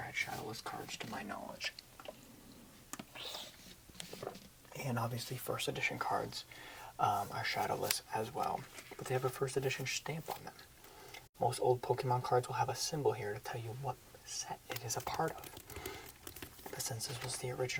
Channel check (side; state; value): both; identical; correlation 1.00